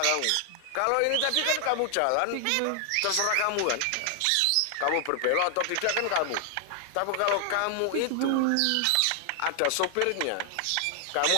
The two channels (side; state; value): both; different; correlation 0.00